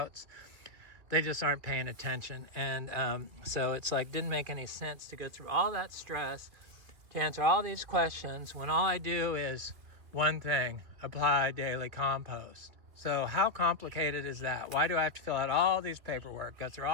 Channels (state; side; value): late; left; 2.5 ms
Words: they just aren't paying attention. And so it's like, didn't make any sense to go through all that stress to answer all these questions when all I do is one thing: apply daily compost. So how complicated is that? Why do I have to fill out all these paperwork, go through